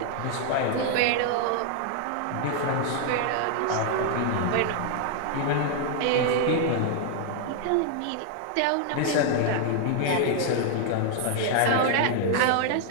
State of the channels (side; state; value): both; different; correlation 0.00